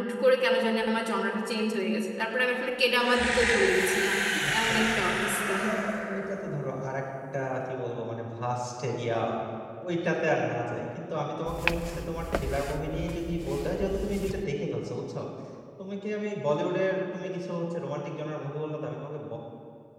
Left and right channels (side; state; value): both; identical; correlation 1.00